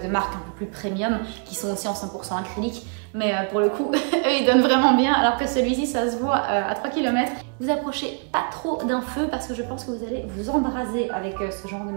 marques un peu plus premium, qui sont aussi en 100% acrylique. Mais pour le coup, eux ils donnent vraiment bien, alors que celui-ci ça se voit à 3 km. Vous approchez pas trop d'un feu parce que je pense que vous allez vous embraser avec ce genre de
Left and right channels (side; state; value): left; quieter; 39.7 dB